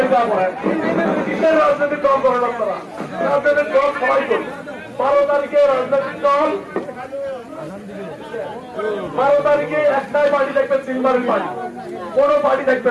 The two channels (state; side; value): identical; both; correlation 1.00